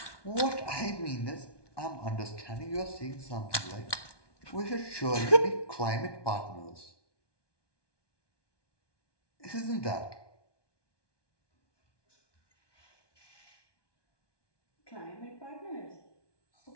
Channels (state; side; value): late; right; 1.2 ms